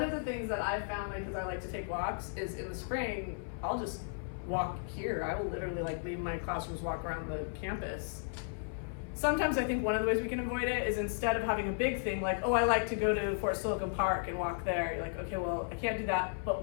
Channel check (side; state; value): right; silent; 55 dB below the other